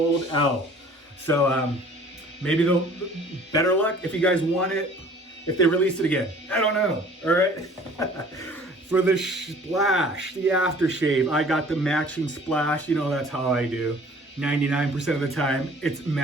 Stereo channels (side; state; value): both; normal; correlation 0.50